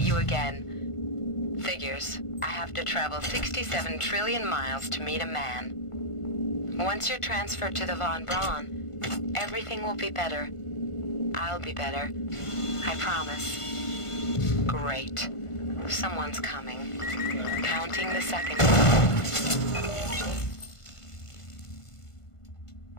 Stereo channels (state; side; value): late; right; 1.5 ms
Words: you again. Figures. I have to travel 67 trillion miles to meet a man. Once you're transferred to the Von Braun, everything will be better. I'll be better. I promise. Great. Someone's coming. Counting the seconds.